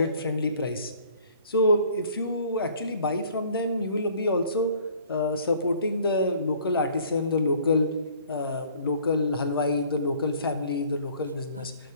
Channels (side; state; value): both; inverted; correlation -0.55